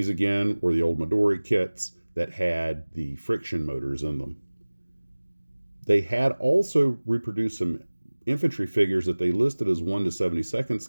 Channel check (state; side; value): inverted; both; correlation -1.00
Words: again were the old Midori kits that had the friction motors in them. They had also reproduced some infantry figures that they listed as 1 to 72nd